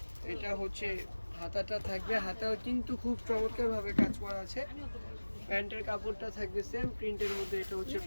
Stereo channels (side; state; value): both; inverted; correlation -1.00